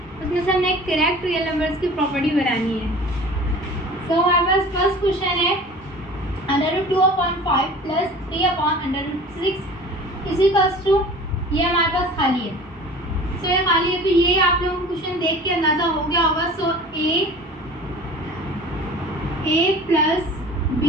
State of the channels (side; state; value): both; normal; correlation 0.42